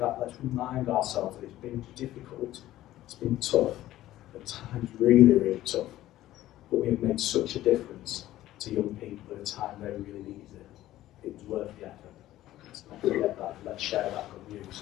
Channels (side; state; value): right; quieter; 14.6 dB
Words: let's remind ourselves that it's been difficult, it's been tough, at times really tough, but we have made such a difference to young people at a time they really needed it. It was worth the effort. Let's not forget that, let's share that good news.